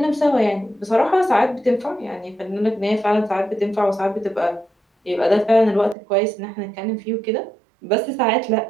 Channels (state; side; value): drops out; left; at 6.0 s